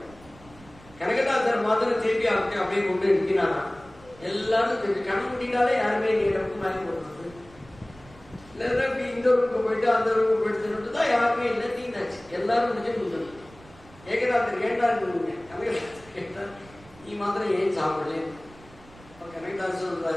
கனகதாசர் மாத்திரம் திருப்பி அப்படியே கொண்டு நிற்கிறாரா. எல்லாரும் கண் முடிந்தாலே யாருமே நீருக்கு வாங்கி கொடுக்குறது இல்லைன்னா இந்த ரூமுக்கு போயிட்டு அந்த ரூமுக்கு போயிட்டு தான் யாருமே இல்லை. தீர்ந்தாச்சு. எல்லாரும் முடிஞ்சு கொடுத்துருது. ஏகதாசர் கேட்டாருங்க. கனகதாசர் கேட்டார், நீ மாத்திரம் ஏன் சாப்பிடல? கனகதாசர்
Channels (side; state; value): right; noise; rumble, 23 dB below the sound